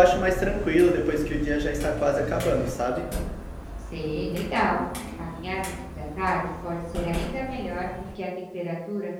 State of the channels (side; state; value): both; identical; correlation 1.00